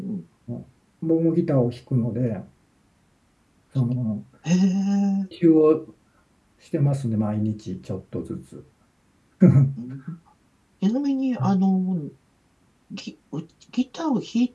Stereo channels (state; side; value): identical; both; correlation 1.00